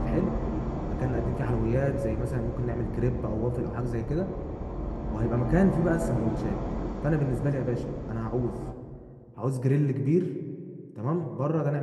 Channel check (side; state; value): both; identical; correlation 1.00